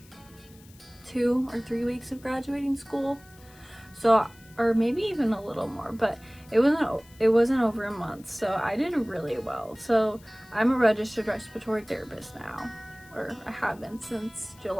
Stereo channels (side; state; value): left; noise; hiss, 25 dB below the sound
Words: 2 or 3 weeks of graduating school. So, or maybe even a little more, but it wasn't over a month, so I did really well. So I'm a registered respiratory therapist now, or I have been since